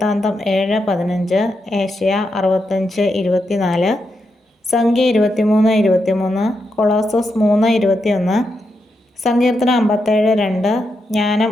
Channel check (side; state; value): both; normal; correlation 0.84